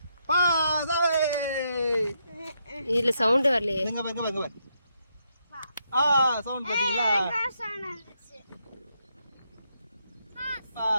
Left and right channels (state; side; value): inverted; both; correlation -0.79